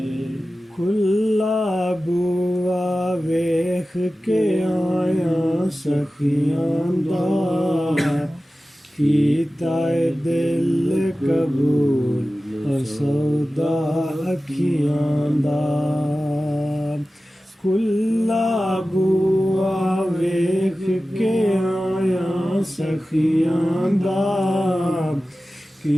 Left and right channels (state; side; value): normal; both; correlation 0.95